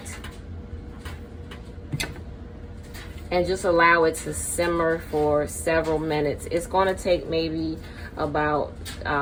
and just allow it to simmer for several minutes. It's going to take maybe about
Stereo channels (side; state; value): both; identical; correlation 1.00